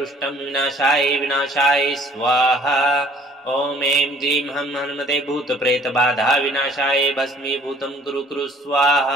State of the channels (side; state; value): both; normal; correlation 0.55